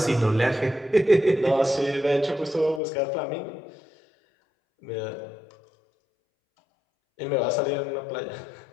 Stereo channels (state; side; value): drops out; right; at 2.8 s